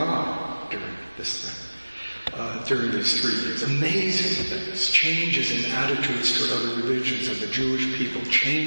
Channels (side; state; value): both; inverted; correlation -1.00